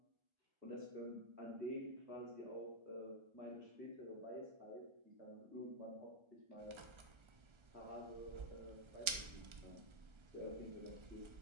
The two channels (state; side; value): late; left; 1.3 ms